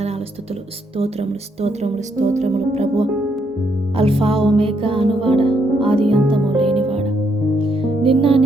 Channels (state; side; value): normal; both; correlation 0.75